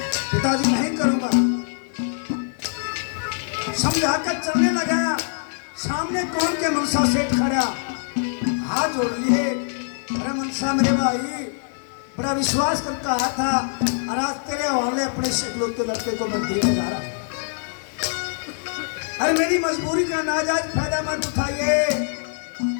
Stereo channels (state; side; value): silent; right; digital silence